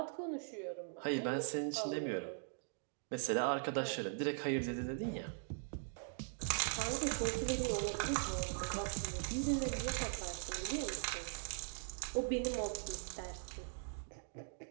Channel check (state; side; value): silent; left; digital silence